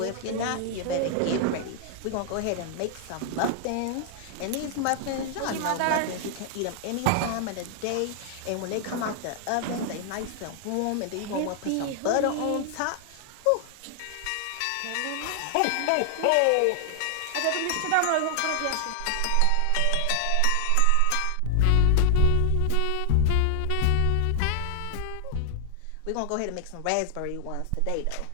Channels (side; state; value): both; different; correlation 0.00